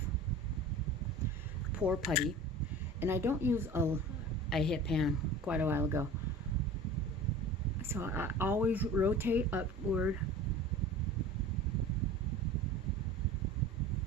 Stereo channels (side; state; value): both; normal; correlation 0.39